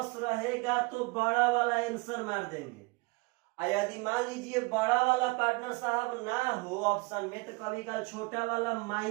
रहेगा तो बड़ा वाला आंसर मार देंगे। यदि मान लीजिए बड़ा वाला पार्टनर साहब ना हो ऑप्शन में, तो कभी कभी छोटा वाला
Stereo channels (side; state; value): left; quieter; 27.1 dB